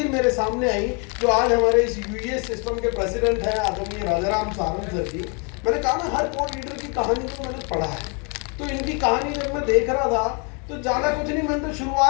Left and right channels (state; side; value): quieter; right; 34.8 dB